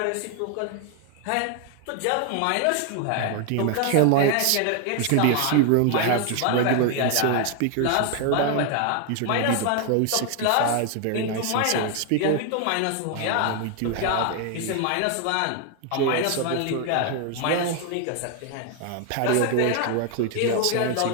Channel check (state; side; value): different; both; correlation 0.00